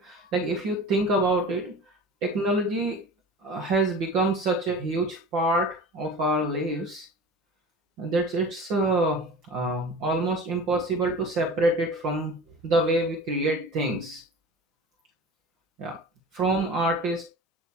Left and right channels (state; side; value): normal; both; correlation 0.37